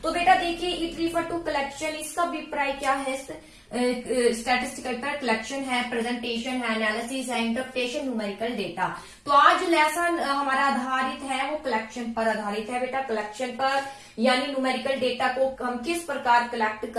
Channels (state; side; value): identical; both; correlation 1.00